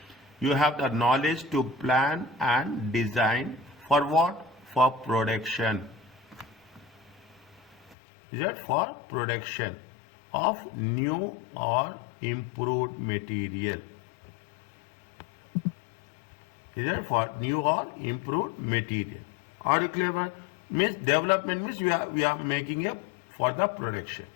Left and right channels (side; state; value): right; drops out; at 8.0 s